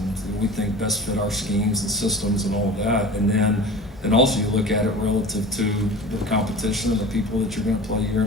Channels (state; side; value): normal; both; correlation 0.37